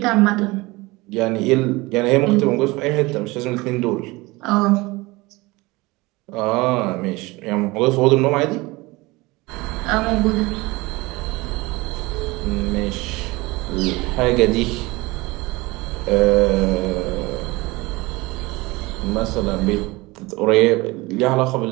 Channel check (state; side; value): quieter; left; 22.4 dB